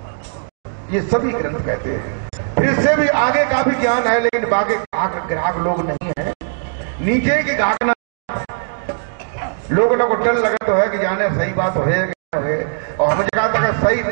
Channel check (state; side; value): silent; left; digital silence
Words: ये सभी ग्रंथ कहते हैं। फिर इससे भी आगे का भी ज्ञान है, लेकिन बाकी ग्राहक लोग नहीं है। नीचे की घाकना लोगों को डर लगा तो है कि जाने सही बात हो है, और हमें कहा था कि सही